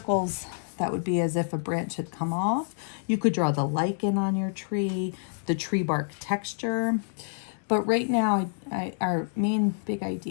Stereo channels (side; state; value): right; silent; digital silence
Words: that would be as if a branch had come off. You could draw the lichen on your tree, the tree bark texture. But right now, our main big